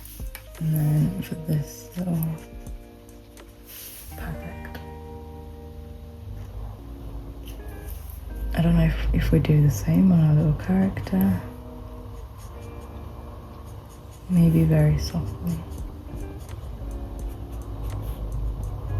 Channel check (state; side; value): identical; both; correlation 1.00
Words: And then for this little, perfect. I don't know if we do the same on our little character. Maybe very softly.